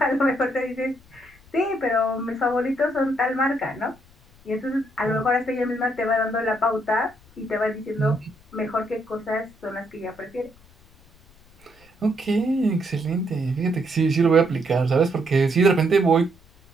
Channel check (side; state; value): left; noise; rumble, 28 dB below the sound